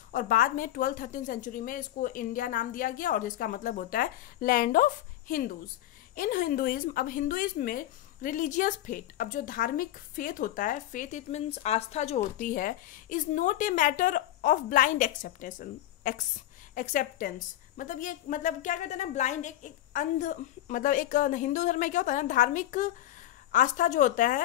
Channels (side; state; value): right; quieter; 13.7 dB